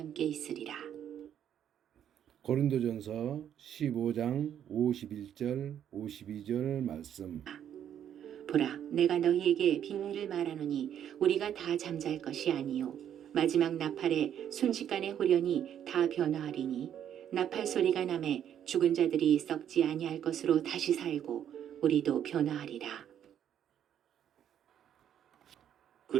있으리라. 고린도전서 15장 51절 52절 말씀. 보라, 내가 너희에게 비밀을 말하노니 우리가 다 잠잘 것이 아니요 마지막 나팔에 순식간에 호련히 다 변화하리니 나팔 소리가 나매 죽은 자들이 썩지 아니할 것으로 다시 살고 우리도 변화하리라.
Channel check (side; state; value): left; quieter; 9.7 dB